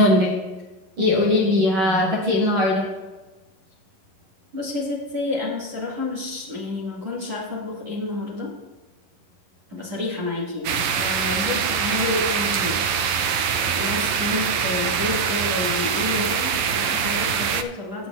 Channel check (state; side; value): late; left; 12 ms